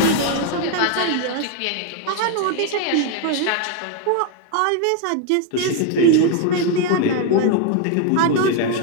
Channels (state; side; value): different; both; correlation 0.01